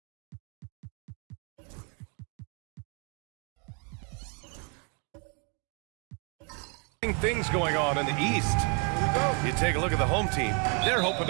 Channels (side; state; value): left; quieter; 35.7 dB